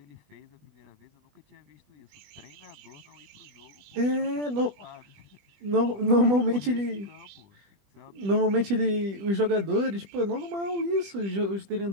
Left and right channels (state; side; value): late; left; 20 ms